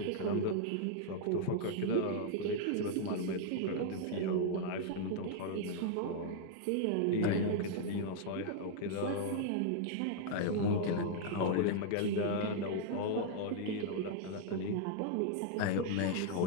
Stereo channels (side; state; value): both; different; correlation -0.01